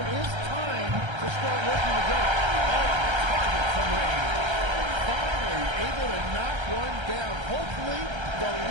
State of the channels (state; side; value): late; left; 1.3 ms